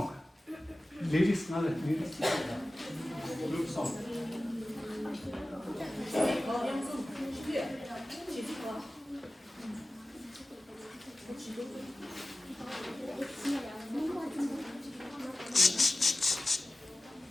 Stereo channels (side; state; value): both; normal; correlation 0.96